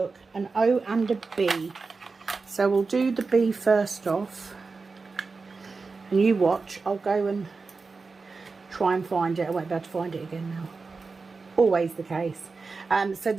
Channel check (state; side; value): quieter; left; 4.3 dB